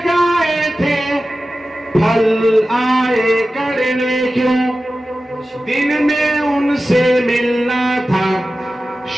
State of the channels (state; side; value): normal; both; correlation 0.94